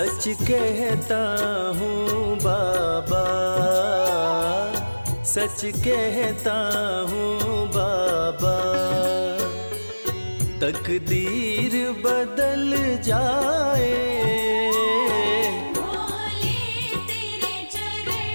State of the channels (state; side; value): inverted; both; correlation -1.00